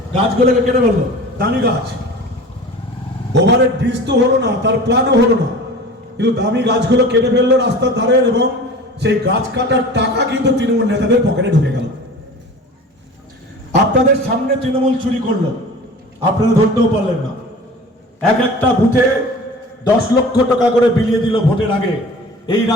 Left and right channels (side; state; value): both; normal; correlation 0.39